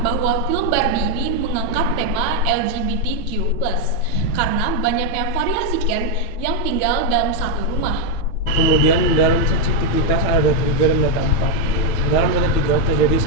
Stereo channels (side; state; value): right; late; 9.1 ms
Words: bahwa film Barbie ini mengangkat tema LGBTQ+, karena banyaknya variasi Ken yang tinggal dalam satu rumah. Kemudian dalam sensitivitas ada data 3 dan data 4. Dalam data 3 terjadi